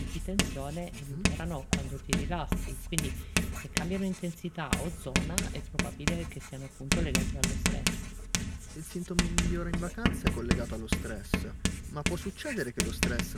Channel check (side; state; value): both; identical; correlation 1.00